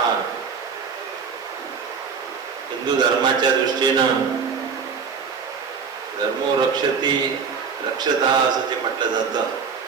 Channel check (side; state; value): left; quieter; 5.9 dB